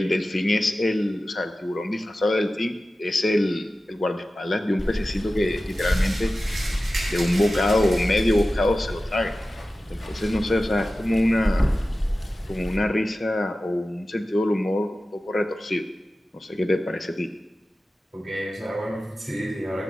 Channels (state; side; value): normal; both; correlation 0.95